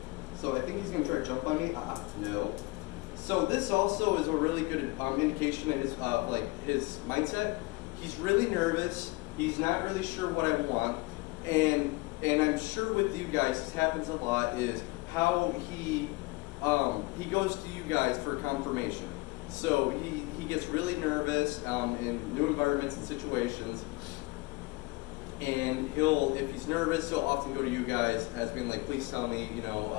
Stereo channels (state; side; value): quieter; right; 23.4 dB